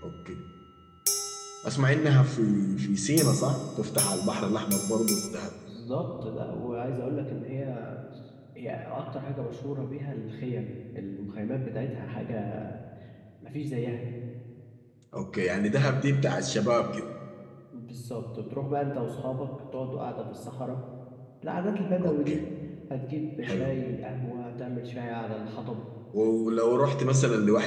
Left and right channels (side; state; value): both; identical; correlation 1.00